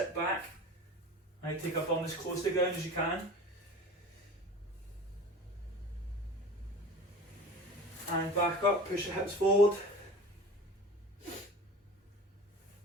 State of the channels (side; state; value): both; normal; correlation 0.37